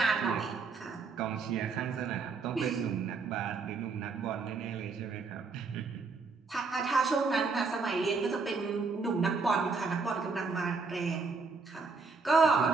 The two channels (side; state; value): left; quieter; 4.5 dB